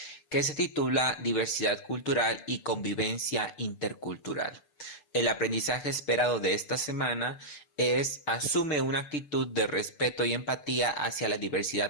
que se titula Diversidad cultural y convivencia intercultural. El aprendizaje esperado de esta semana es asume una actitud de respeto y empatía hacia la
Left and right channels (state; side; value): late; right; 6.8 ms